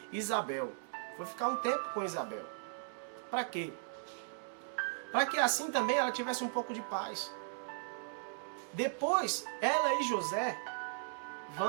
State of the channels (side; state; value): left; silent; digital silence